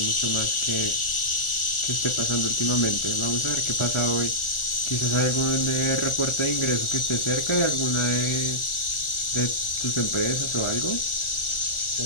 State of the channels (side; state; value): right; late; 1.4 ms